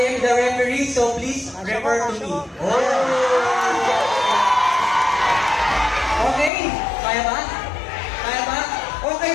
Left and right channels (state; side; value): drops out; right; at 6.5 s